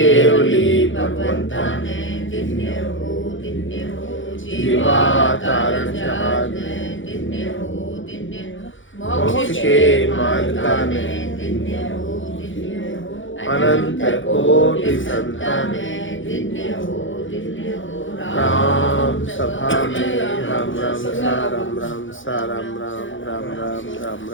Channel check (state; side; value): late; right; 0.56 ms